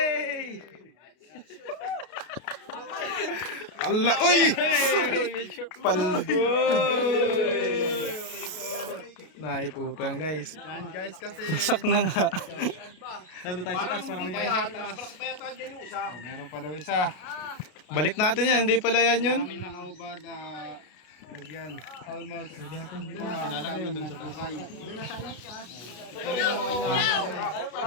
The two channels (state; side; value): late; right; 33 ms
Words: Allah! Uy! Naiputang guys. Yan guys kasi. Sak na nga. Nandun tayo sa taas. Parang may malaki pa yata dyan yung isa. Meron pa daw isa. Balik natin yan. Hindi pala yan yun. Kami nakaubad. Lagyan. Almost. Hindi ko na kami nagtukay.